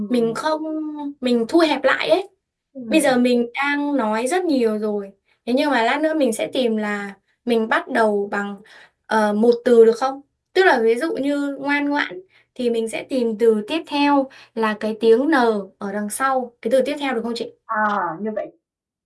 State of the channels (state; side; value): identical; both; correlation 1.00